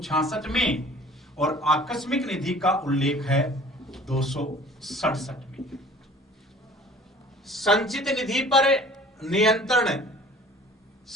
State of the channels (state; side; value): normal; both; correlation 0.49